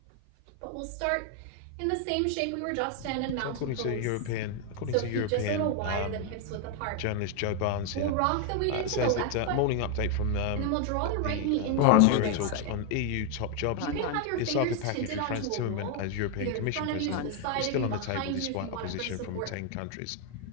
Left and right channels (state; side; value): different; both; correlation 0.01